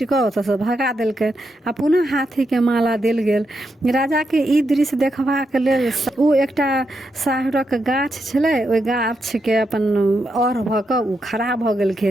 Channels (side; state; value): both; normal; correlation 0.83